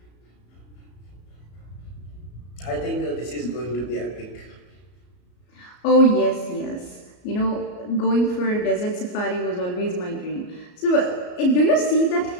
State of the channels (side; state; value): right; late; 33 ms